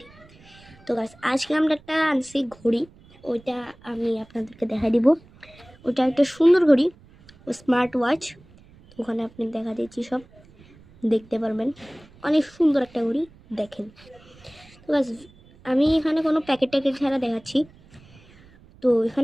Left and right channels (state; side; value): noise; right; rumble, 26 dB below the sound